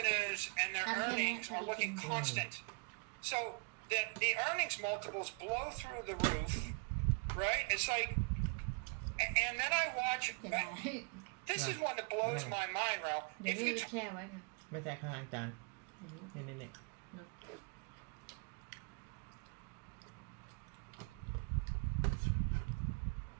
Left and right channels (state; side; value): quieter; left; 33.7 dB